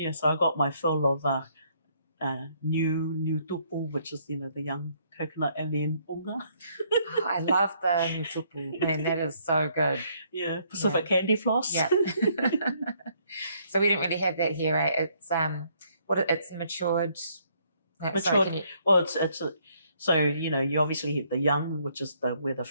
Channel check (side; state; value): both; inverted; correlation -0.68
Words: so I got my fill of new tupu, which is, you know, the young coconut, and then unga. Oh, I love the new tupu. Man, that is so good. Yeah, Pacific candy floss. Yeah. So we didn't really have that here, right? It's it's matured. Matured. Well, it's so, you know, you obviously have the young, which is where the